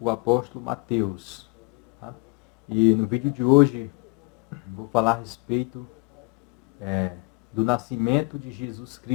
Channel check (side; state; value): right; quieter; 29.1 dB